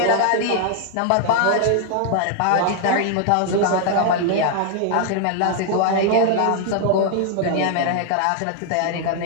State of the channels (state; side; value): different; both; correlation -0.01